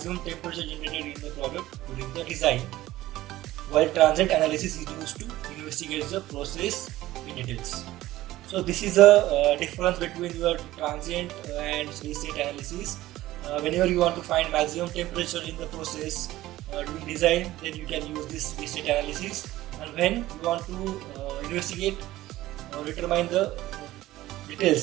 temperature generated in the product during the design, while transient analysis is used to investigate the process in details. So this is a difference between your transient and steady state analysis. Whenever you want to find maximum temperature in the process during design, then you can use this steady state analysis, and when you want to investigate or determine the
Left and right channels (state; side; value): quieter; left; 16.0 dB